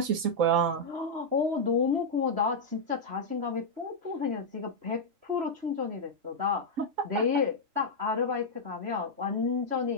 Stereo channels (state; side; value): late; left; 3.8 ms